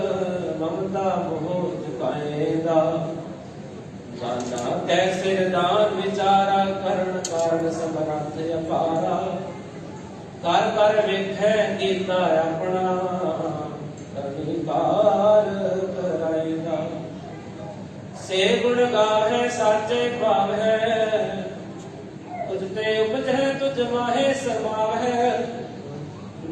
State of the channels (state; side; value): identical; both; correlation 1.00